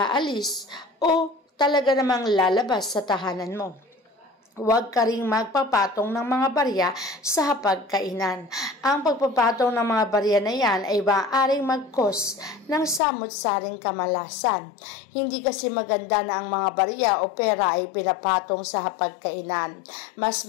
o talaga namang lalabas sa tahanan mo. Huwag ka ring magpapatong ng mga barya sa hapagkainan. Ang pagpapatong ng mga barya na yan ay maaaring mag-cause ng samot-saring kamalasan. Hindi kasi maganda na ang mga barya o pera ay pinapatong sa hapagkainan. Mas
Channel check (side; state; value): right; drops out; at 13.0 s